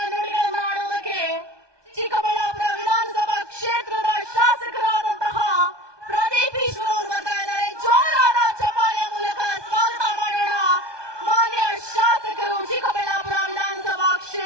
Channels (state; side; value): late; left; 1.2 ms